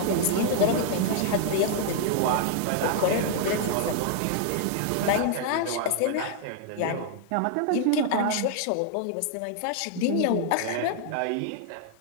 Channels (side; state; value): both; different; correlation 0.00